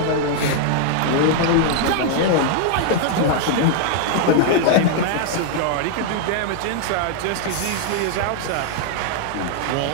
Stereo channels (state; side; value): different; both; correlation 0.00